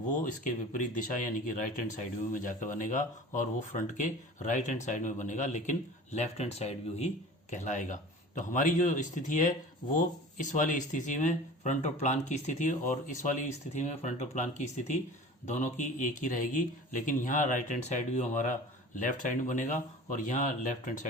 इसके विपरीत दिशा यानी कि राइट हैंड साइड व्यू में जाकर बनेगा और वो फ्रंट के राइट हैंड साइड में बनेगा, लेकिन लेफ्ट हैंड साइड व्यू ही कहलाएगा। तो हमारी जो स्थिति है वो इस वाली स्थिति में फ्रंट और प्लान की स्थिति और इस वाली स्थिति में फ्रंट और प्लान की स्थिति दोनों की एक ही रहेगी, लेकिन यहाँ राइट हैंड साइड व्यू हमारा लेफ्ट साइड में बनेगा और यहाँ लेफ्ट हैंड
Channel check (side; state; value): both; normal; correlation 0.40